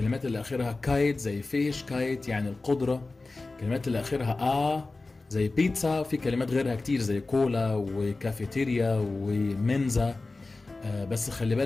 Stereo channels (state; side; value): quieter; right; 3.4 dB